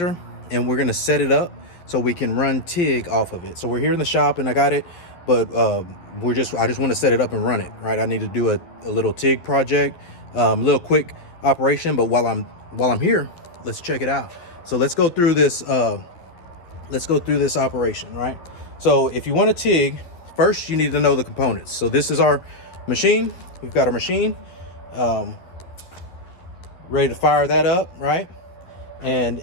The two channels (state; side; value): late; right; 12 ms